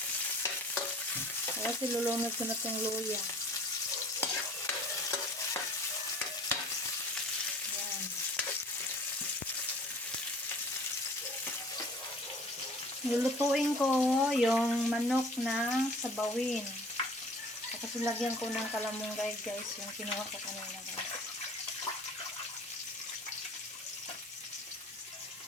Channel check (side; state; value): both; normal; correlation 0.48